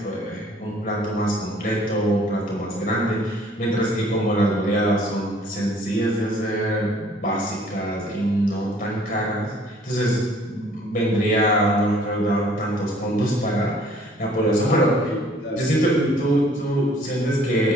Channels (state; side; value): normal; both; correlation 0.57